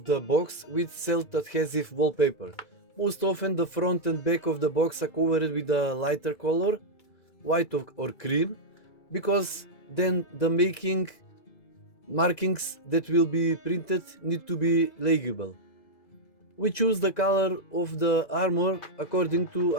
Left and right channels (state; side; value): late; right; 2.0 ms